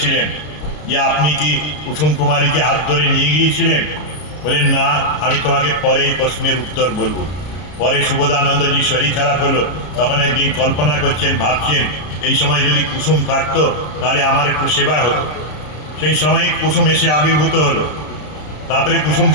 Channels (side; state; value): right; late; 33 ms